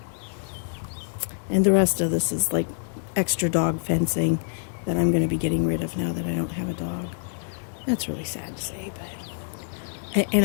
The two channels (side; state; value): right; silent; digital silence